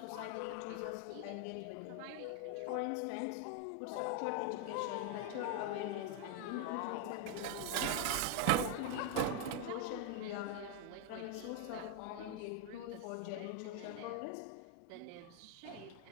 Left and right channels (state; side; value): different; both; correlation 0.01